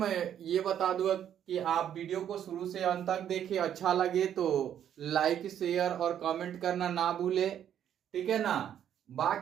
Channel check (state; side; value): quieter; left; 9.9 dB